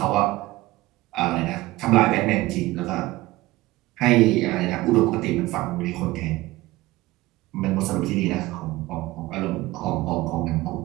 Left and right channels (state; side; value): quieter; left; 18.8 dB